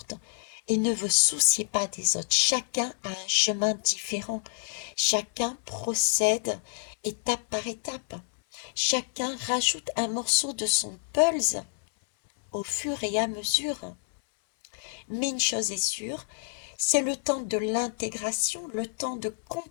et ne vous souciez pas des autres. Chacun a un chemin différent, chacun procède étape par étape, chacun rajoute un morceau de son puzzle au fur et à mesure. Mais une chose est sûre, c'est le temps de l'intégration, le temps de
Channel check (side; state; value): right; silent; 59 dB below the other